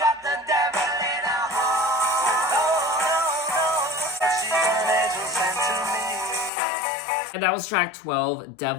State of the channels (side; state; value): right; drops out; at 6.5 s